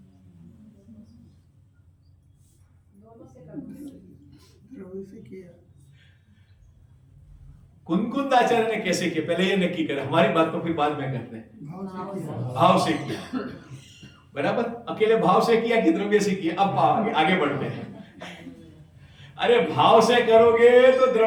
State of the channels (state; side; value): identical; both; correlation 1.00